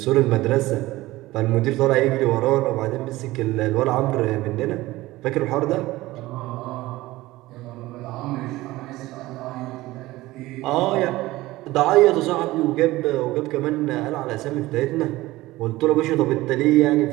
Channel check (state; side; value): quieter; left; 18.3 dB